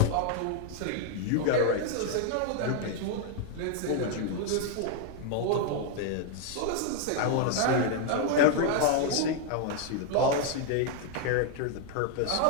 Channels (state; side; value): different; both; correlation 0.00